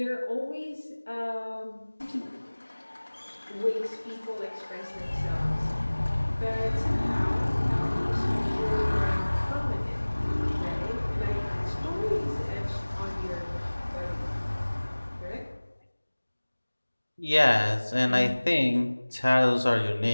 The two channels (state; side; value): inverted; both; correlation -1.00